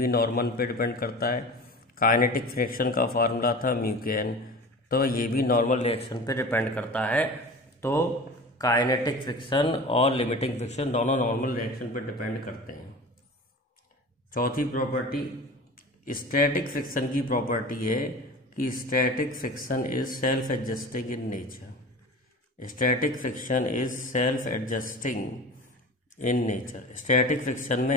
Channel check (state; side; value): normal; both; correlation 0.35